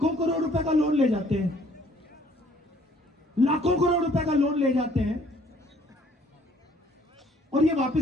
करोड़ रुपए का लोन ले जाते हैं, लाखों करोड़ रुपए का लोन ले जाते हैं और ये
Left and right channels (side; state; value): both; normal; correlation 0.60